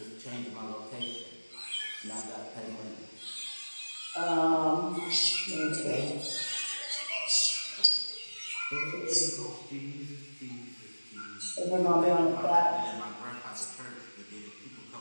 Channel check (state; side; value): inverted; both; correlation -1.00